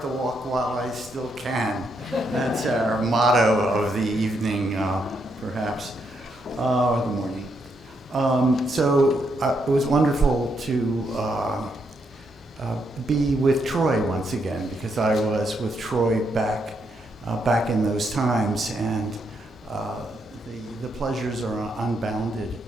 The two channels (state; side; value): normal; both; correlation 0.78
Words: the walk while I still can. That's our motto of the evening, perhaps, or the morning. So it was wonderful to be with Troy once again, because I was with Troy back in those times, and the pleasures are unbounded,